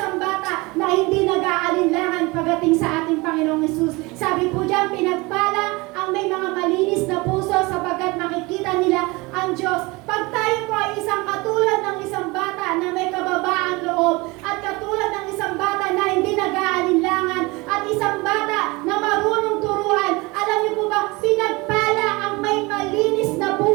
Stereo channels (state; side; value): quieter; left; 24.2 dB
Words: bata na hindi nag-aalinlangan pagdating sa ating Panginoong Hesus. Sabi po diyan, pinagpala ang may mga malinis na puso sapagkat makikita nila ang Diyos. Pag tayo po ay isang katulad ng isang bata na may kababaang loob, at katulad ng isang bata na hindi nag-aalinlangan, at isang bata na marunong turuan, alam niyo po ba, pinagpala ang may malinis na